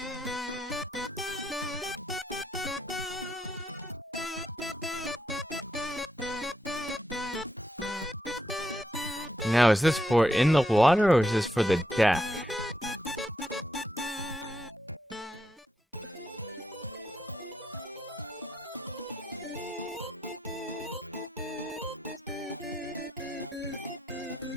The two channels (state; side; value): normal; both; correlation 0.81